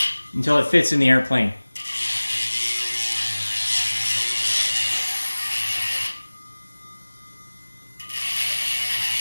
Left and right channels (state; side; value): inverted; both; correlation -1.00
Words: until it fits in the airplane.